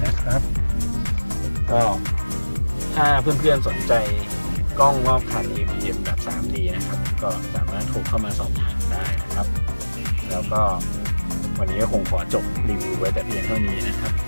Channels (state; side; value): inverted; both; correlation -1.00